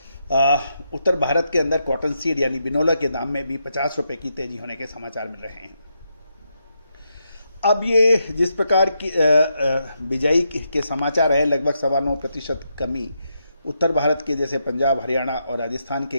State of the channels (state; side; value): inverted; both; correlation -0.82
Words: उत्तर भारत के अंदर कॉटन सीड यानी बिनोला के दाम में भी 50 रुपए की तेजी होने के समाचार मिल रहे हैं। अब ये जिस प्रकार की बिजाई के समाचार है, लगभग 9.25% कमी उत्तर भारत के जैसे पंजाब, हरियाणा और राजस्थान